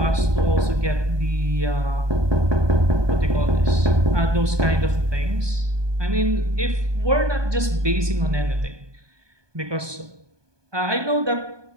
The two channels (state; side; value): late; left; 1.2 ms